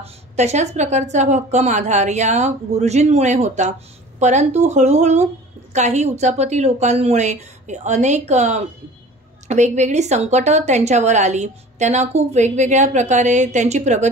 तशाच प्रकारचा भक्कम आधार या गुरुजींमुळे होता। परंतु हळूहळू काही उचापती लोकांमुळे अनेक वेगवेगळी संकट त्यांच्यावर आली। त्यांना खूप वेगवेगळ्या प्रकारे त्यांची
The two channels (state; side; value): normal; both; correlation 0.43